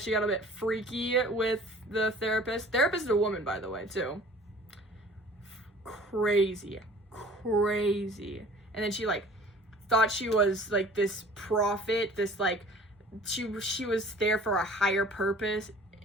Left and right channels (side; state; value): both; normal; correlation 0.48